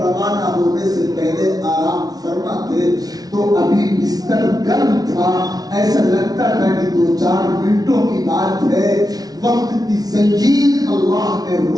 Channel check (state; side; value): late; left; 0.19 ms